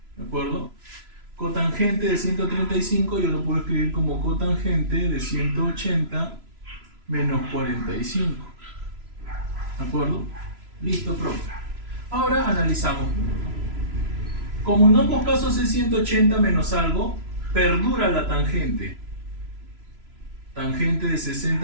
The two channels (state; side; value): late; left; 3.0 ms